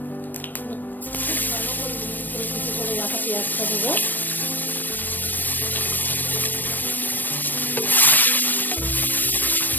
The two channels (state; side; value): late; right; 0.089 ms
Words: ভালো করে রাখা পেঁয়াজটা দেবো।